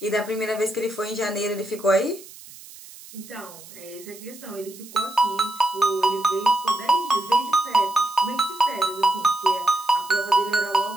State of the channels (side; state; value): right; noise; hiss, 18 dB below the sound